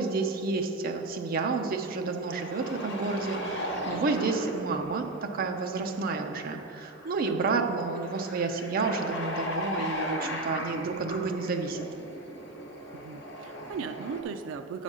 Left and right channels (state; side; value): quieter; left; 3.0 dB